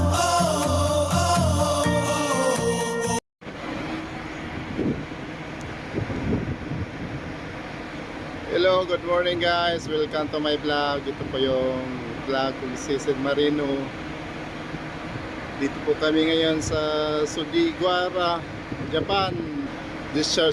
good morning guys. Welcome to my vlog. Ito po yung vlog kung Sisig Marino. Dito po kami ngayon sa Sugiwara, Japan.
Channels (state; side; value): identical; both; correlation 1.00